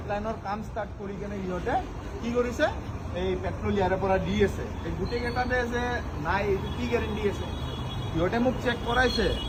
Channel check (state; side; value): identical; both; correlation 1.00